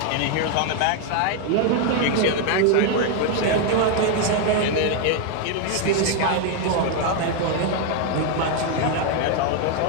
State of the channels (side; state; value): both; different; correlation 0.01